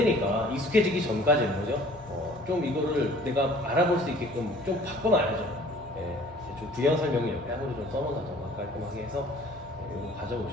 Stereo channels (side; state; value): both; normal; correlation 0.51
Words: 익숙해지기 전까지는 거죠. 좀 이거를 내가 알아볼 수 있게끔 좀 바꿔놔야죠. 예, 좀 부연 설명을 옆에 한으로 좀 써놓는다던가 깔끔하게 해서 이거